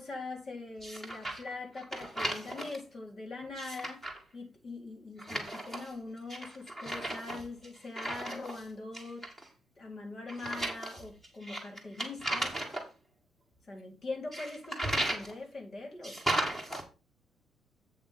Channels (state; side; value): normal; both; correlation 0.84